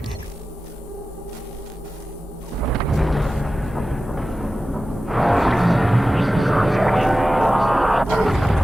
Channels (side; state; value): both; normal; correlation 0.94